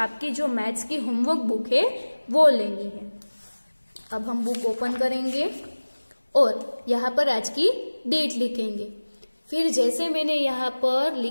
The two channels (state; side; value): inverted; both; correlation -1.00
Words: जो मैथ्स की होमवर्क बुक है वो लेनी है। अब हम बुक ओपन करेंगे और यहाँ पर आज की डेट लिखेंगे। फिर जैसे मैंने यहाँ पर